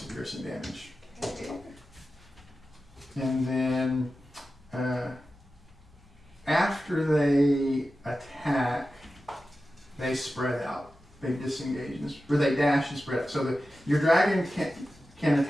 of piercing damage. Okay. And then after they attack, they spread out. They disengage, or they dash and spread out. So that your dragon can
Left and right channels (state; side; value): normal; both; correlation 0.93